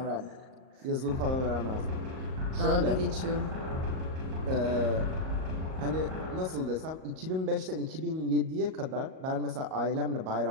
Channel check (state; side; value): late; left; 38 ms